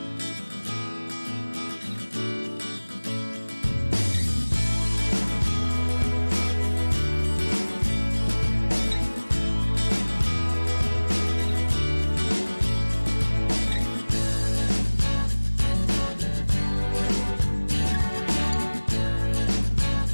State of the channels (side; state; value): both; inverted; correlation -1.00